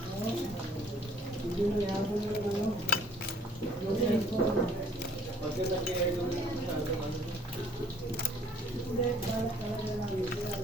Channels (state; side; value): normal; both; correlation 0.58